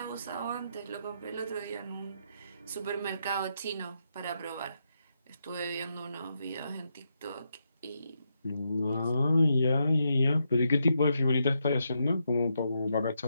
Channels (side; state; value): both; inverted; correlation -0.82